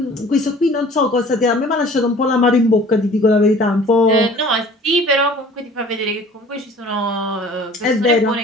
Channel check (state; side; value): normal; both; correlation 0.48